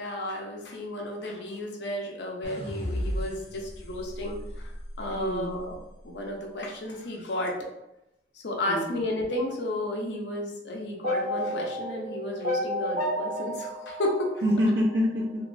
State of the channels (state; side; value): normal; both; correlation 0.37